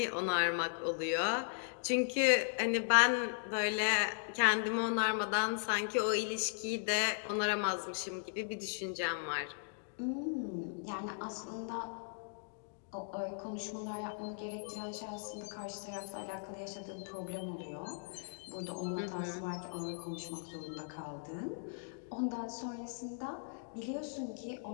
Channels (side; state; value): right; silent; digital silence